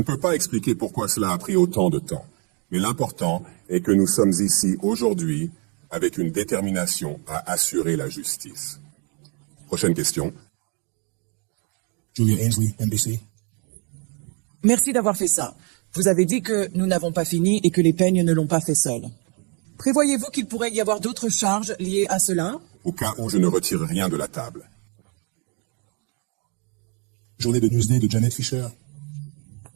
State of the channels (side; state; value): left; quieter; 35.2 dB